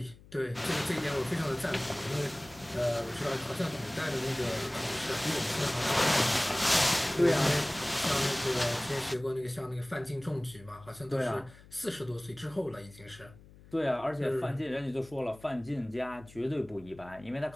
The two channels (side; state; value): left; noise; hum, 22 dB below the sound